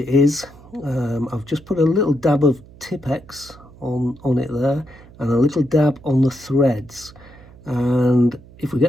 is, I've just put a little dab of Tipex on it there, and a little dab on the threads, and if we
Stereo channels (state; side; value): noise; right; hum, 22 dB below the sound